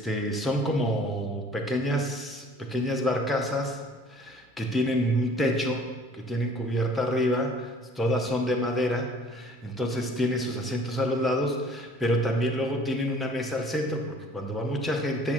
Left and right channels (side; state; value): both; normal; correlation 0.52